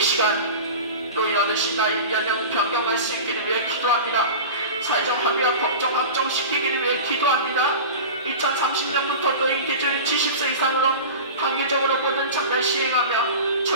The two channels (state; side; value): inverted; both; correlation -0.32